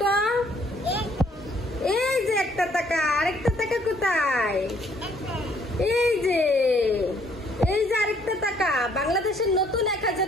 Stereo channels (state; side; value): normal; both; correlation 0.64